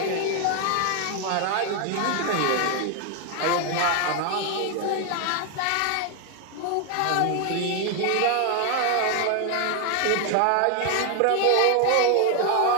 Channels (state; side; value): different; both; correlation 0.01